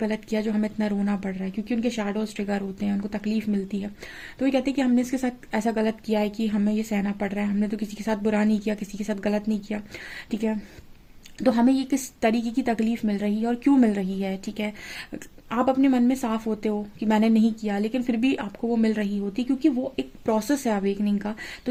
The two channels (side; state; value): both; identical; correlation 1.00